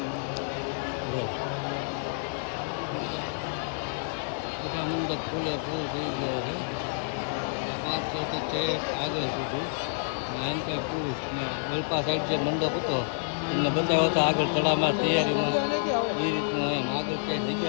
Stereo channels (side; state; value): right; silent; digital silence